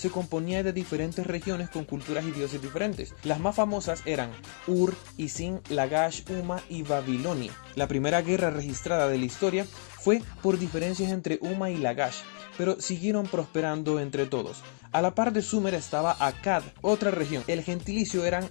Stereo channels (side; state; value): right; silent; 58 dB below the other